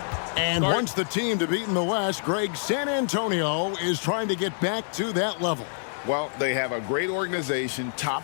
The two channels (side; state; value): right; silent; digital silence